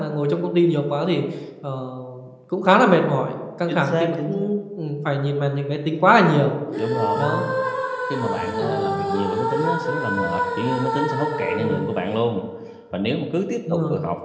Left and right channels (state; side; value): identical; both; correlation 1.00